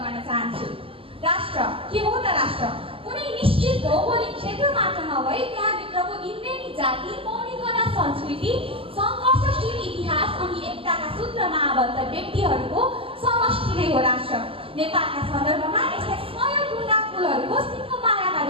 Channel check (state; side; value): late; left; 0.26 ms